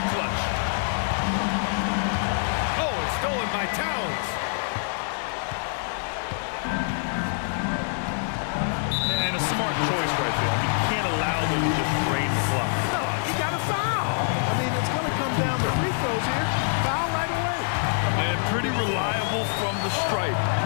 clutch. Oh, it's stolen by Towns. And a smart choice right there. I mean, you can't allow them to just drain the clock. No, he got a foul. I mean, it's going to come down to free throws here. Foul right away. And pretty reliable from the stripe.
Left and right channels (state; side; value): silent; right; 61 dB below the other